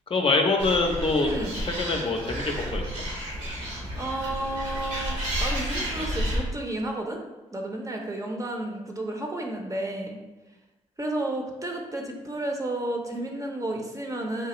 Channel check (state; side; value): normal; both; correlation 0.57